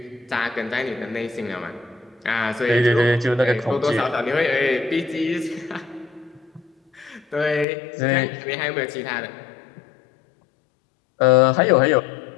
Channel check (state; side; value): drops out; right; at 7.7 s